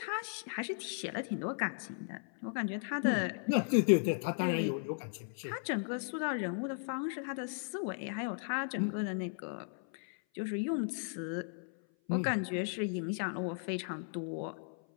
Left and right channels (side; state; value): right; silent; 54 dB below the other